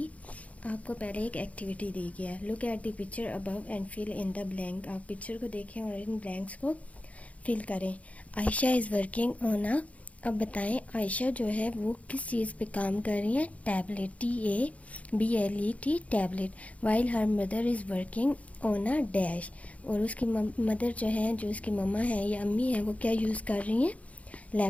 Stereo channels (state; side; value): late; right; 0.067 ms